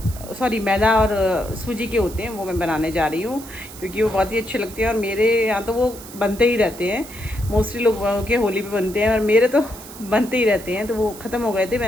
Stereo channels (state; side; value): noise; right; hiss, 16 dB below the sound